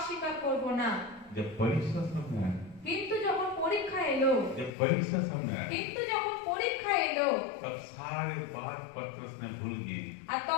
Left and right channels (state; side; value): drops out; right; at 4.7 s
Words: করব না। जब परीक्षा सामने आया, কিন্তু যখন পরীক্ষা এলো, जब परीक्षा सामने आया, কিন্তু যখন পরীক্ষা এলো, तब सारे बात पतरस ने भूल गए। আর